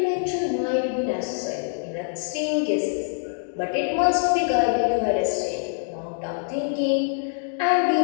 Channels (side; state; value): right; silent; digital silence